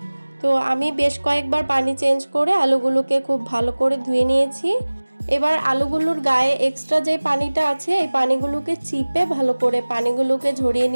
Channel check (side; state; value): both; inverted; correlation -1.00